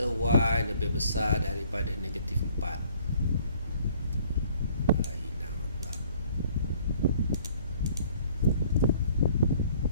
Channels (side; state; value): both; inverted; correlation -0.59